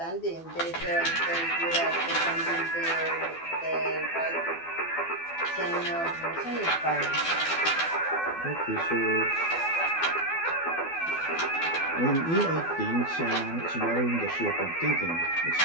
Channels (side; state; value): right; late; 12 ms